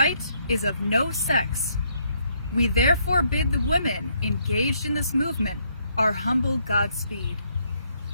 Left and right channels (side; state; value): both; inverted; correlation -0.72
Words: is of no sex. We therefore bid the women engaged in this movement our humble Godspeed.